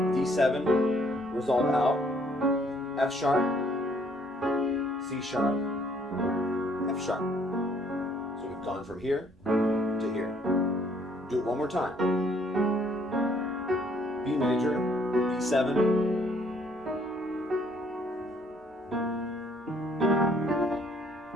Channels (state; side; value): normal; both; correlation 0.65